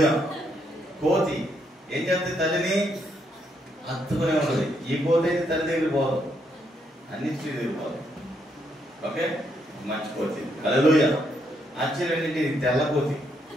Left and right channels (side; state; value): both; normal; correlation 0.75